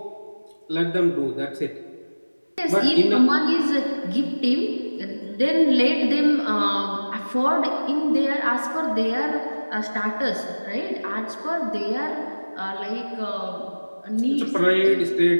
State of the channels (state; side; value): inverted; both; correlation -1.00